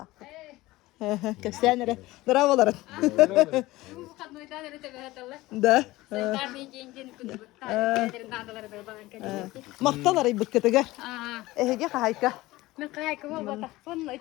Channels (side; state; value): right; quieter; 18.7 dB